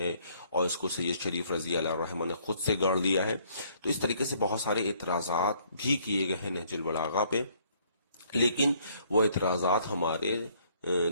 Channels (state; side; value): inverted; both; correlation -0.64